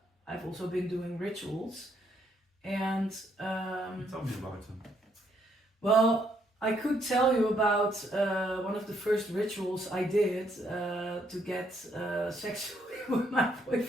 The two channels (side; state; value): both; normal; correlation 0.72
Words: I've also been doing rituals, and tell me about them. Well, I could tell you about one of the first rituals I did to get sexually with my